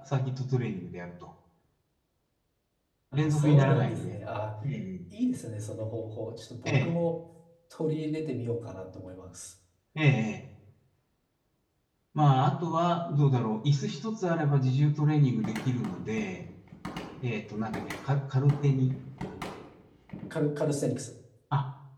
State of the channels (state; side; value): identical; both; correlation 1.00